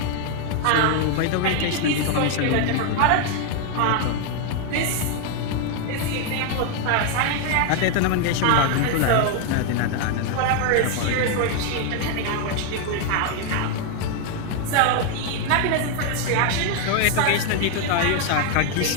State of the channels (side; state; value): both; different; correlation 0.01